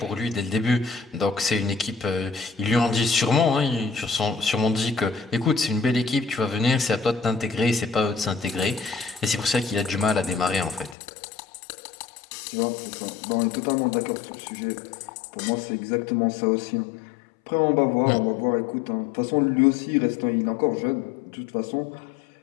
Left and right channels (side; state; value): right; drops out; at 11.0 s